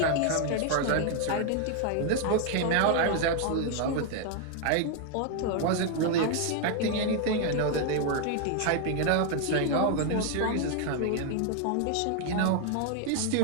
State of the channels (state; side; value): different; both; correlation 0.00